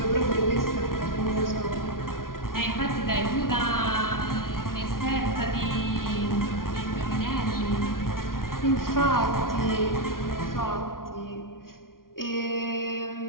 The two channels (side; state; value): right; late; 0.91 ms